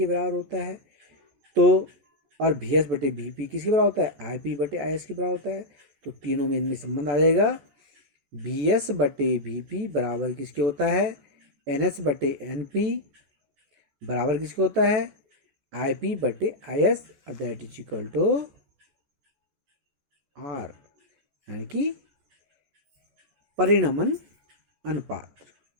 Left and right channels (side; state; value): left; late; 14 ms